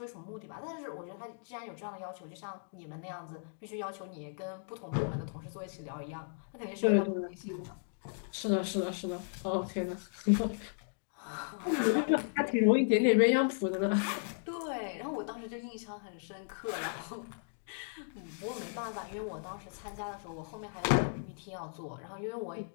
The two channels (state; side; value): silent; right; digital silence